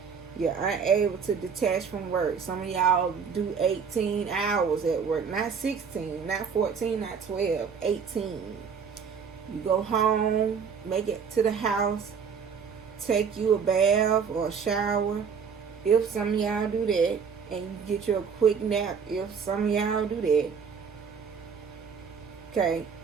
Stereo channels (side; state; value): left; quieter; 6.3 dB